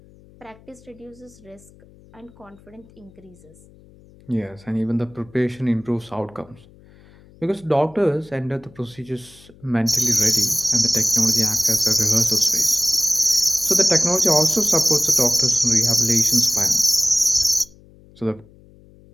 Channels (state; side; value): noise; left; hum, 25 dB below the sound